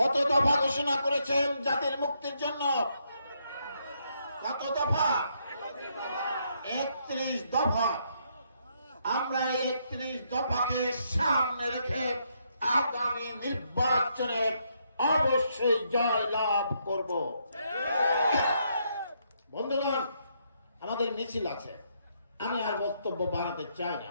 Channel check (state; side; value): inverted; both; correlation -0.75